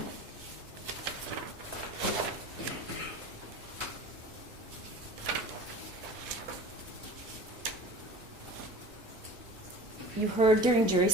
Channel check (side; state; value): both; normal; correlation 0.39